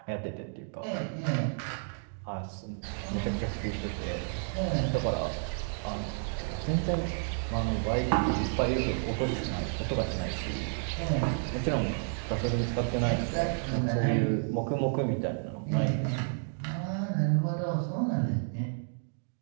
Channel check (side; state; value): left; silent; 57 dB below the other